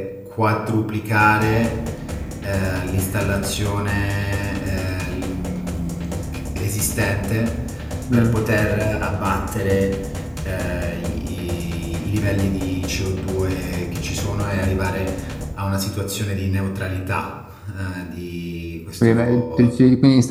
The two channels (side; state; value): both; identical; correlation 1.00